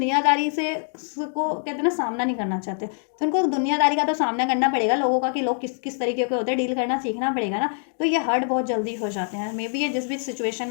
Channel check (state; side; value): silent; right; 58 dB below the other